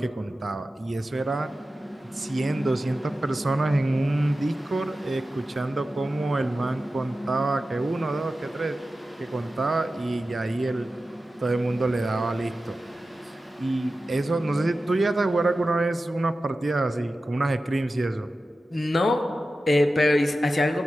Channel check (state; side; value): normal; both; correlation 0.94